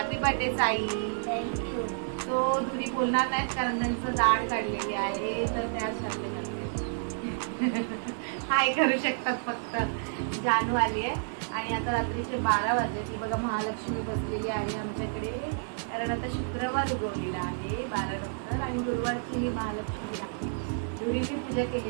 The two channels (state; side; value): silent; left; digital silence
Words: birthday Sai. Thank you. तो धुरी बोलणार नाहीत कारण त्यांचं दाढ काढलेली आहे, तर त्याच शब्द करते. हाय करू शकतात फक्त. जानू आली आहे आणि आता रात्रीचे 12 वाजले. ती बघा महालक्ष्मी बसलेली आहे आमच्याकडे, कारण आता शुक्रवार उगवलेला आहे 12 नंतर आणि गुरुवारची ही महालक्ष्मी आहे. धुरीची पूजा